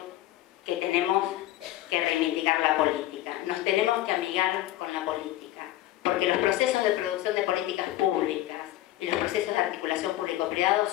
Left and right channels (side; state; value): right; quieter; 14.9 dB